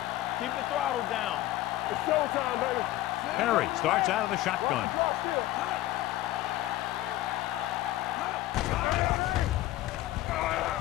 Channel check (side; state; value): right; quieter; 15.7 dB